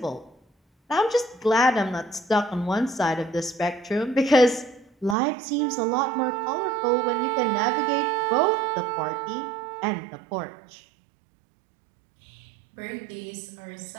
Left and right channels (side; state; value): left; drops out; at 5.2 s